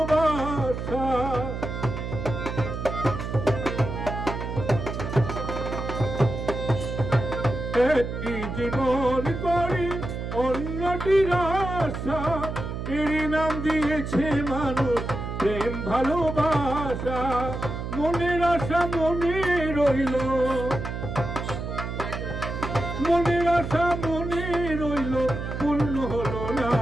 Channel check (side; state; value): right; noise; hum, 5 dB below the sound